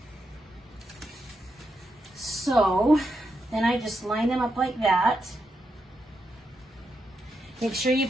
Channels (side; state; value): both; normal; correlation 0.84